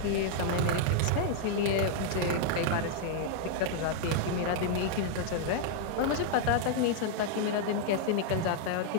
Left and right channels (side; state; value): both; different; correlation -0.01